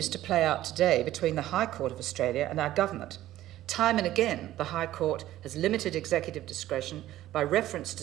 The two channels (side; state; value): left; quieter; 14.1 dB